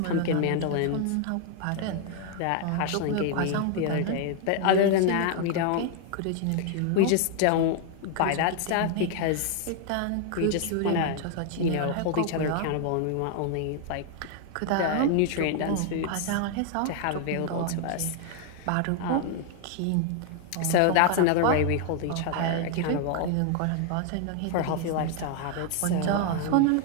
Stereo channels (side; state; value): both; different; correlation 0.00